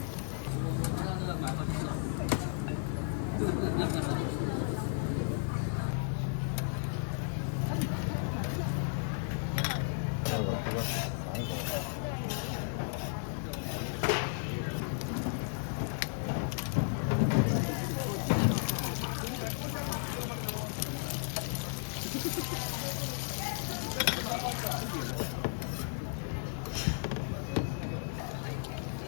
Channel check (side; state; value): right; silent; 55 dB below the other